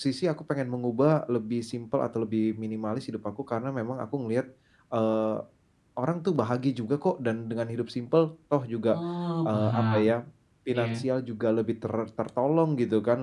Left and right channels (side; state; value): both; identical; correlation 1.00